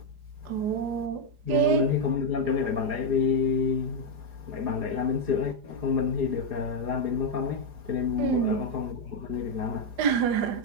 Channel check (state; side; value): late; left; 4.8 ms